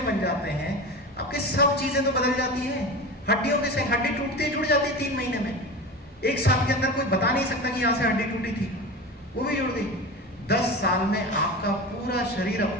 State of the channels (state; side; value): normal; both; correlation 0.29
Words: बन जाते हैं, आपके सब चीजें तो बदल जाती हैं। हड्डियों के सेल, हड्डी टूटती जुड़ जाती है 3 महीने में, 1 साल के अंदर कोई बता नहीं सकता कि यहाँ से हड्डी टूटी थी, वो भी जुड़ गई। 10 साल में आपका पूरा शरीर